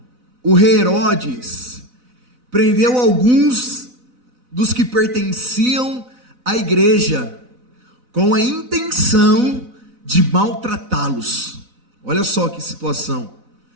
o rei Herodes prendeu alguns dos que pertenciam à igreja, com a intenção de maltratá-los. Olha só que situação.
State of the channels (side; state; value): left; late; 4.0 ms